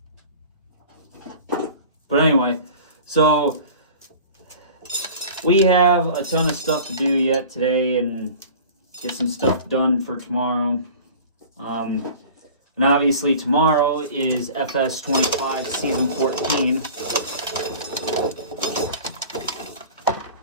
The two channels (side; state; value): both; inverted; correlation -0.41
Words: But anyway, so we have a ton of stuff to do yet today and get some stuff done for tomorrow. And obviously tomorrow is FS 25 Season 14.